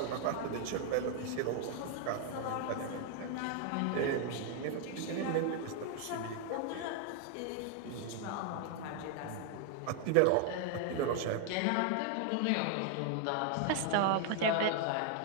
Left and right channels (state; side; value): different; both; correlation 0.00